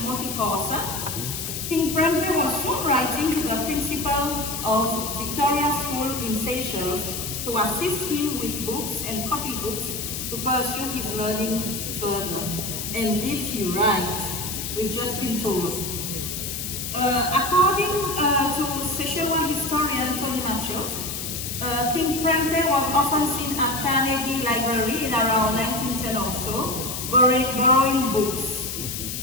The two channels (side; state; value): left; noise; hiss, 5 dB below the sound